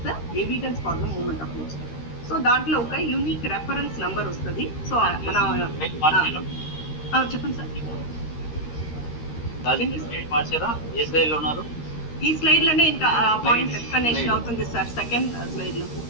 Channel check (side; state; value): right; late; 13 ms